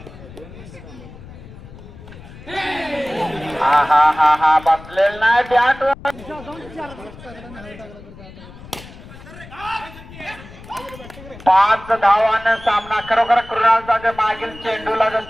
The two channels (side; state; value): left; noise; rumble, 17 dB below the sound